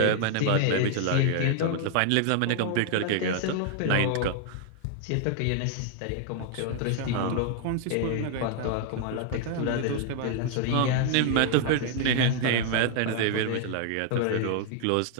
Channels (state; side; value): different; both; correlation 0.00